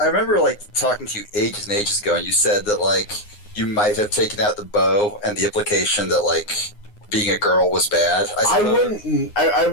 I remember like talking to you ages and ages ago, and you said that like you might have taken out the bow and the implication that like being a girl was bad. I suppose. I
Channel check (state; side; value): late; right; 9.7 ms